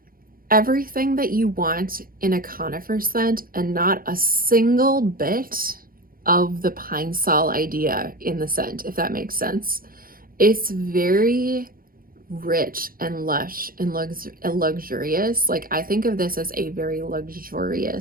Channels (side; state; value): left; late; 0.42 ms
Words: everything that you want in a conifer scent and not a single bit of the pine sol idea in the scent, if that makes sense. It's very rich and lush and luxurious. Like, I think of this as a very